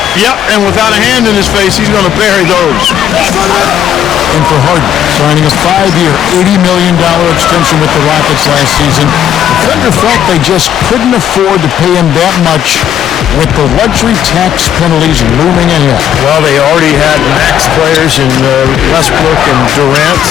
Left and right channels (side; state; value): right; quieter; 10.1 dB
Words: Yep, and without a hand in his face, he's going to bury those. And for Harden, signing a 5-year, $80 million extension with the Rockets last season, the Thunder felt they just couldn't afford to pay him that much with the luxury tax penalties looming ahead. Well, they already had max players in Westbrook and Durant,